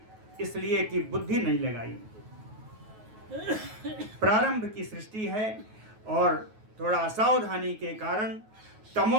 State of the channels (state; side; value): late; left; 9.3 ms